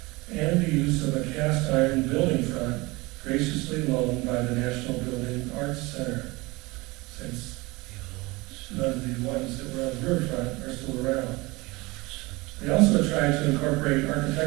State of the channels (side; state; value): left; quieter; 23.1 dB